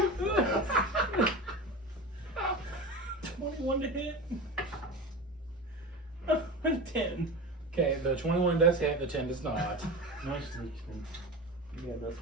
21 to hit. 10. Okay, the 21 does hit, the 10 does not. No sneak. Yeah, that's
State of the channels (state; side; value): normal; both; correlation 0.27